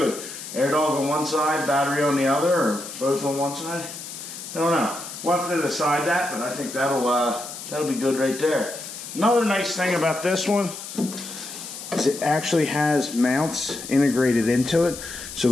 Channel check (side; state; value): left; noise; hiss, 11 dB below the sound